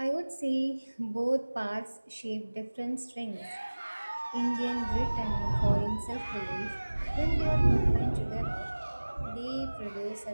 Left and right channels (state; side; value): inverted; both; correlation -1.00